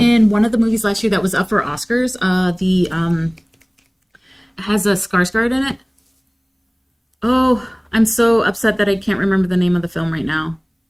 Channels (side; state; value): both; identical; correlation 1.00